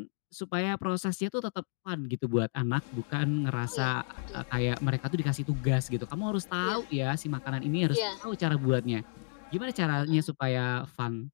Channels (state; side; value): silent; right; digital silence